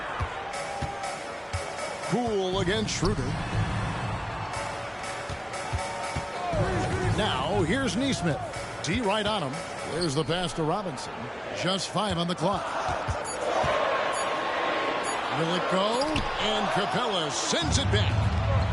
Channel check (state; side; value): identical; both; correlation 1.00